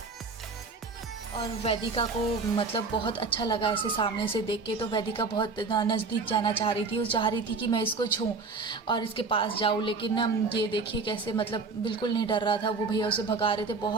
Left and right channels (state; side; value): quieter; left; 4.2 dB